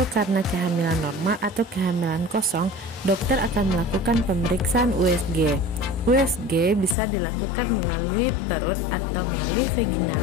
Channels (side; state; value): right; drops out; at 7.0 s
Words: karena kehamilan normal atau kehamilan kosong, dokter akan melakukan pemeriksaan USG. USG bisa dilakukan melalui perut atau melalui vagina.